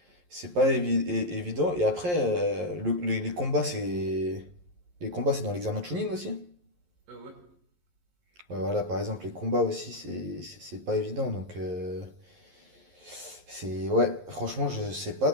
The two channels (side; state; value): left; late; 11 ms